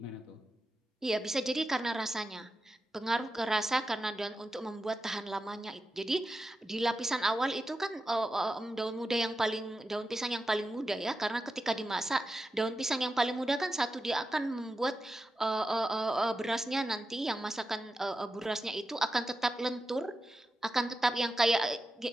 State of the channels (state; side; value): normal; both; correlation 0.90